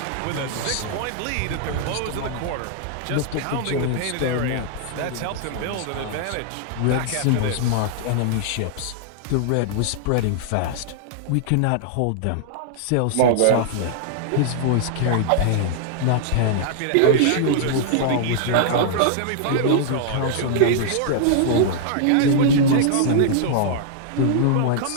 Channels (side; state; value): both; different; correlation -0.01